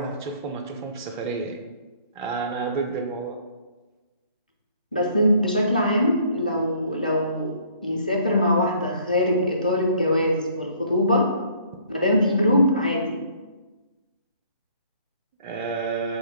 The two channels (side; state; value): both; inverted; correlation -0.59